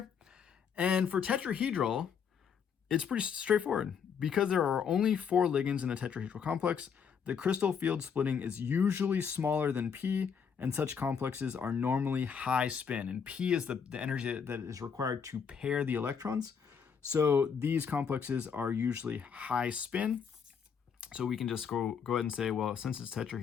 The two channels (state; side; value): quieter; right; 6.8 dB